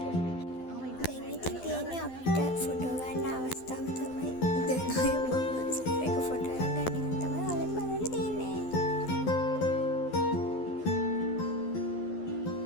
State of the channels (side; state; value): right; late; 12 ms